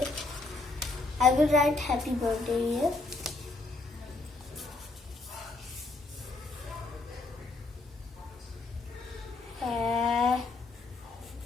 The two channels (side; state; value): right; quieter; 3.5 dB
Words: I will write happy birthday here.